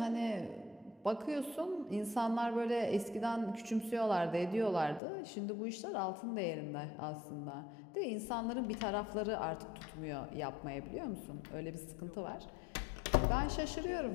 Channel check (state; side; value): drops out; right; at 5.0 s